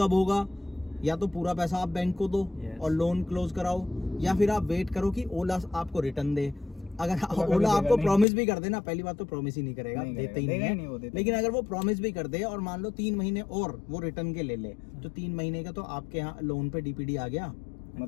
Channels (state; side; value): drops out; right; at 8.2 s